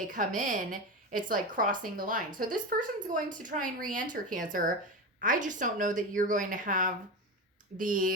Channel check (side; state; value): both; normal; correlation 0.21